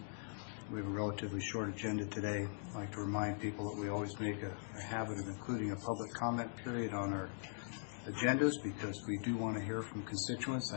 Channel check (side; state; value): right; silent; digital silence